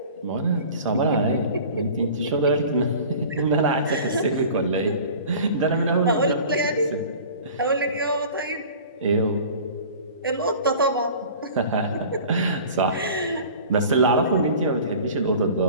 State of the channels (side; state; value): both; inverted; correlation -0.43